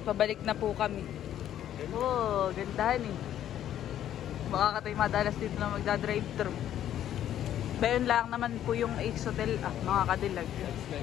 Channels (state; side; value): quieter; right; 11.2 dB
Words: pabalik na po kami. Oh, gandahan eh. Baka ka tayo madalas dito na magdadrive-thru. Bayon lang naman po yung Ace Hotel mga kadilag.